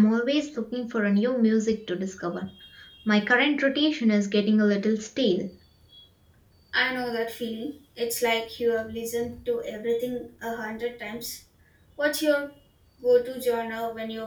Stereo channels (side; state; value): both; identical; correlation 1.00